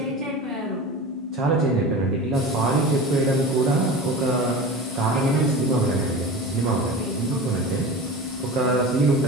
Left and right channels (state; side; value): normal; both; correlation 0.32